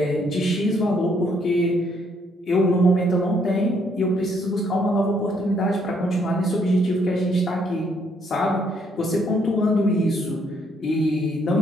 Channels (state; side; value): normal; both; correlation 0.70